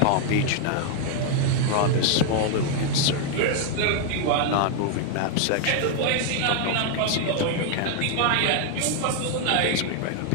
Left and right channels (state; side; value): different; both; correlation 0.00